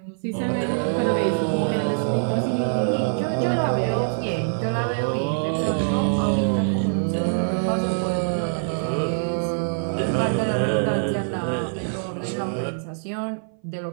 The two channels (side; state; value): left; silent; 58 dB below the other